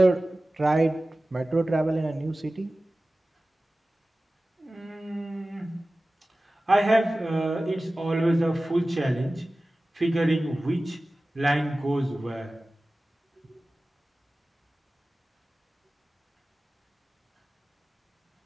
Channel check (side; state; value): both; normal; correlation 0.96